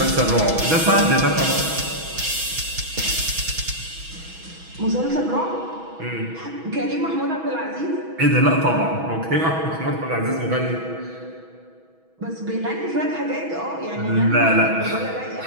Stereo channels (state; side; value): late; left; 6.2 ms